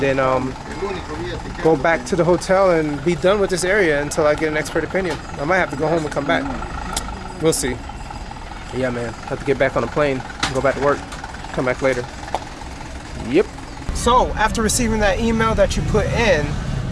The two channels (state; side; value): identical; both; correlation 1.00